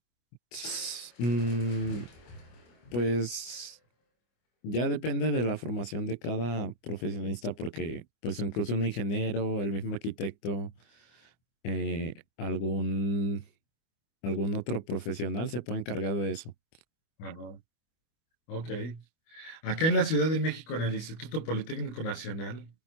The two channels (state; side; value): late; right; 25 ms